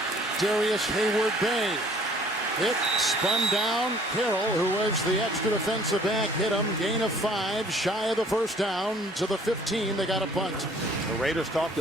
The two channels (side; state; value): both; normal; correlation 0.56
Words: Darius Hayward-Bay. Hit, spun down. Carroll, who was the extra defensive back, hit him. Gain of 5, shy of the 1st down. To the 15, they got a punt. The Raiders talked